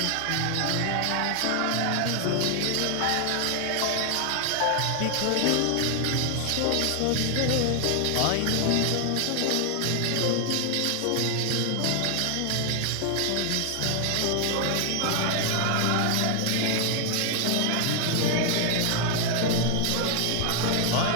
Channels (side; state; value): both; different; correlation 0.00